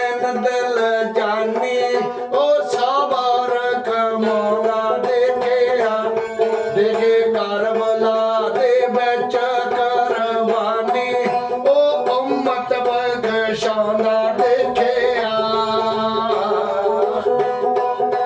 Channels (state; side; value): identical; both; correlation 1.00